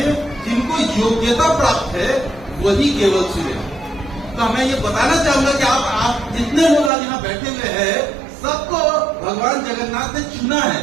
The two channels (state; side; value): drops out; left; at 6.9 s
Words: जिनको योग्यता प्राप्त है वही केवल सुने। तो मैं ये बताना चाहूंगा कि आप जितने लोग आज यहाँ बैठे हुए हैं, सबको भगवान जगन्नाथ ने चुना है,